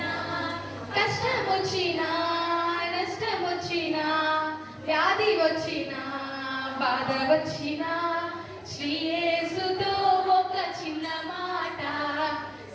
కష్టం వచ్చినా నష్టం వచ్చినా వ్యాధి వచ్చినా బాధ వచ్చినా శ్రీ యేసుతో ఒక చిన్న మాట.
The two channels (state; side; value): identical; both; correlation 1.00